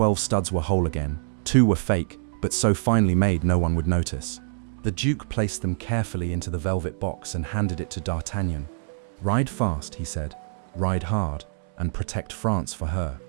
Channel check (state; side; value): silent; left; digital silence